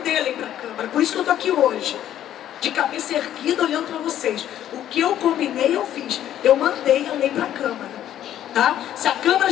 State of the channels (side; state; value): right; quieter; 11.5 dB